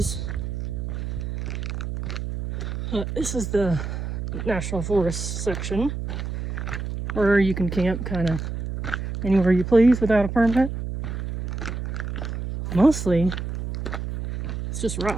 This is the National Forest section where you can camp kind of anywhere you please without a permit. Mostly, it's just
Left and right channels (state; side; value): noise; right; hum, 5 dB below the sound